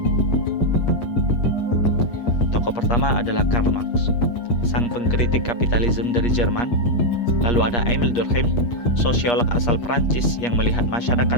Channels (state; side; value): late; right; 8.4 ms